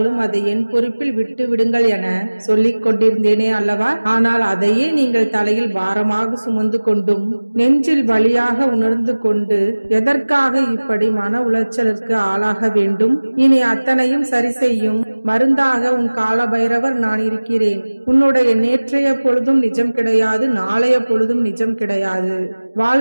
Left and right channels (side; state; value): both; inverted; correlation -1.00